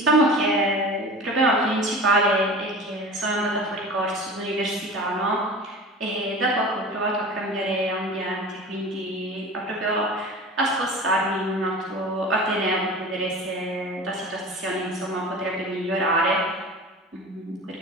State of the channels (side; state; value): both; normal; correlation 0.36